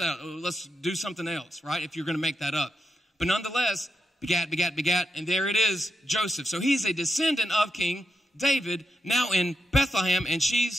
out. Let's do something else, right, if you're going to make that up. But nonetheless, begat, and there it is, Joseph. So he's a descendant of King David, now in Bethlehem, and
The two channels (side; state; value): both; normal; correlation 0.86